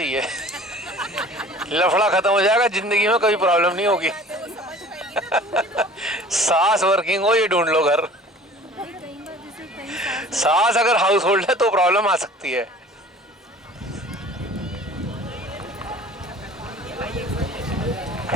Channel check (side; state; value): both; normal; correlation 0.46